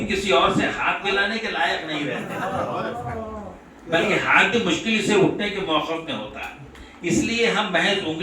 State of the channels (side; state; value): both; identical; correlation 1.00